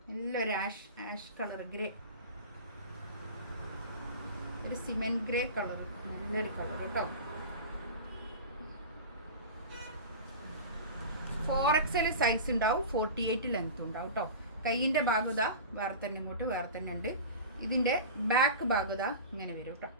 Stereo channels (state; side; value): inverted; both; correlation -0.32